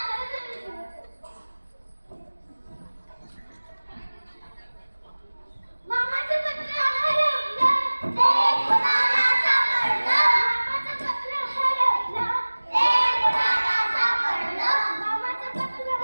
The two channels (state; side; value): inverted; both; correlation -1.00